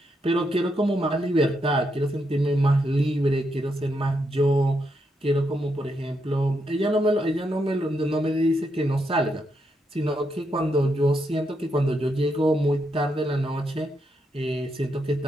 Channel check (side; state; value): both; normal; correlation 0.81